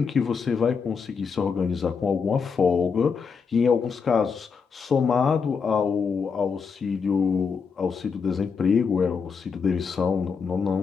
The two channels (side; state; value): right; quieter; 5.7 dB